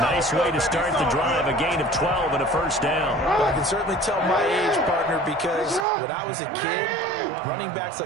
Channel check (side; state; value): left; drops out; at 5.9 s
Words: Nice way to start the drive, a gain of 12 and a first down. Well, I can certainly tell my age, partner, because when I was a kid, running backs